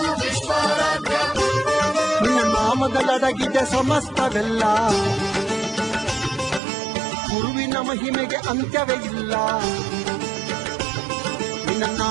ವಿಶ್ವಾರಾಧ್ಯ ನಿನ್ನ ನಾಮದಲ್ಲಡಗಿದೆ ಸಮಸ್ತವೆಲ್ಲ, ಗುರುವಿನ ಮಹಿಮೆಗೆ ಅಂತ್ಯವೇ ಇಲ್ಲ. ನಿನ್ನ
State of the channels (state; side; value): drops out; left; at 6.6 s